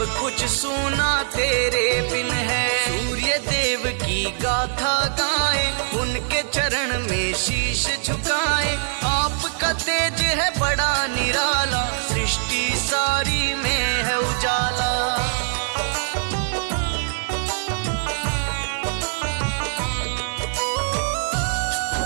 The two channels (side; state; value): left; silent; digital silence